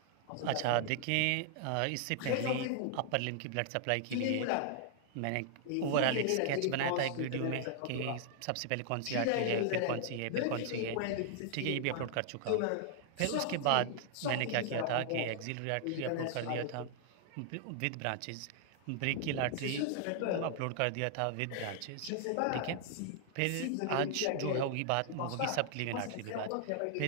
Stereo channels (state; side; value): different; both; correlation -0.01